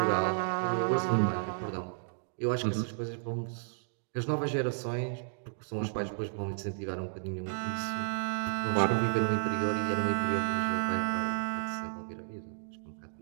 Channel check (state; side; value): silent; left; digital silence